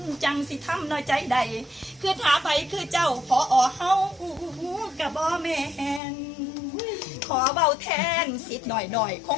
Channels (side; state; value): right; drops out; at 6.0 s